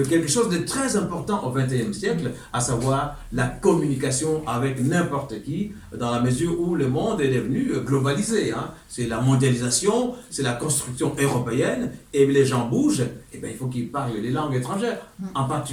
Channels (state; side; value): identical; both; correlation 1.00